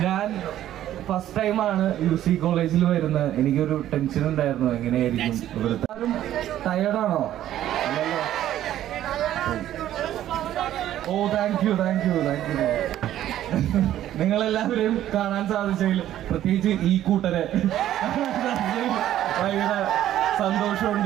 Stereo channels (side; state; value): left; quieter; 12.4 dB